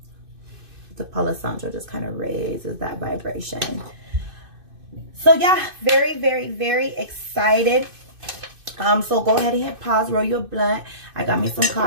the Palo Santo just kind of raises that vibration. So yeah, very, very, very excited. So go ahead and hit pause, roll your blunt. I got me some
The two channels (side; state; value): left; late; 2.6 ms